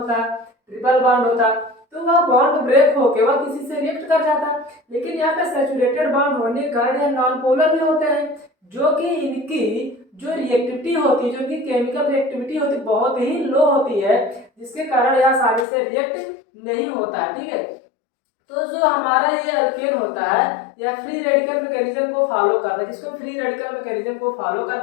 ट्रिपल बॉन्ड होता, तो वह बॉन्ड ब्रेक होके वह किसी से रिएक्ट कर जाता। लेकिन यहाँ पे सैचुरेटेड बॉन्ड होने के कारण यह नॉन पोलर भी होते हैं, जो कि इनकी जो रिएक्टिविटी होती है, जो कि केमिकल रिएक्टिविटी होती है, बहुत ही लो होती है, जिसके कारण यह आसानी से रिएक्ट नहीं होता है। ठीक है, तो जो हमारा ये अल्केन होता है यह फ्री रेडिकल मैकेनिज्म को फॉलो करता है। किसको? फ्री रेडिकल मैकेनिज्म को फॉलो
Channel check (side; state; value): right; drops out; at 15.7 s